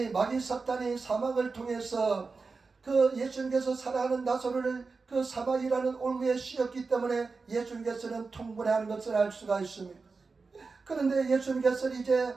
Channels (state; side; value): quieter; left; 4.3 dB